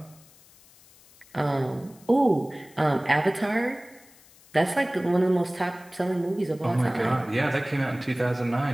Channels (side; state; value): left; noise; hiss, 26 dB below the sound